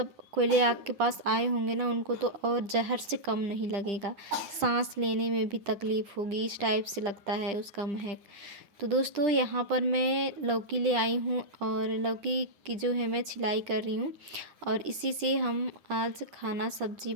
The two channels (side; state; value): left; late; 10 ms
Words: कोयले आग के पास आए होंगे ना, उनको तो और जहर से कम नहीं लगेगा, सांस लेने में भी तकलीफ़ होगी, इस टाइप से लगता है उसका महक। तो दोस्तों यहाँ पर मैं लौकी ले आई हूँ, और लौकी की जो है मैं छिलाई कर रही हूँ, और इसी से हम आज खाना सब्जी